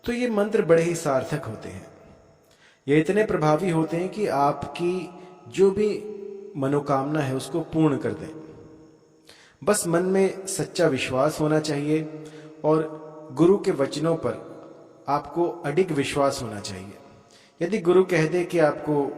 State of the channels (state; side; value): identical; both; correlation 1.00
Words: तो ये मंत्र बड़े ही सार्थक होते हैं। ये इतने प्रभावी होते हैं कि आपकी जो भी मनोकामना है उसको पूर्ण कर दें। बस मन में सच्चा विश्वास होना चाहिए, और गुरु के वचनों पर आपको अडिग विश्वास होना चाहिए। यदि गुरु कह दे कि